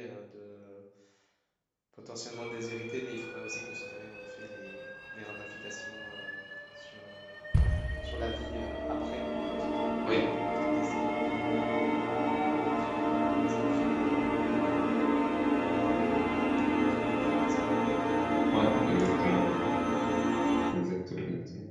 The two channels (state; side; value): identical; both; correlation 1.00